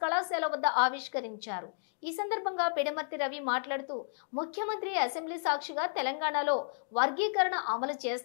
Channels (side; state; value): right; silent; digital silence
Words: కళాశాల వద్ద ఆవిష్కరించారు. ఈ సందర్భంగా పిడమర్తి రవి మాట్లాడుతూ ముఖ్యమంత్రి అసెంబ్లీ సాక్షిగా తెలంగాణలో వర్గీకరణ అమలు